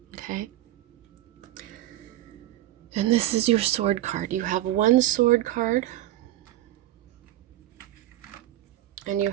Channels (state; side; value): quieter; left; 14.5 dB